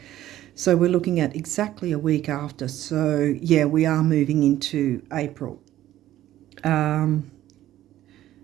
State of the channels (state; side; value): quieter; left; 13.6 dB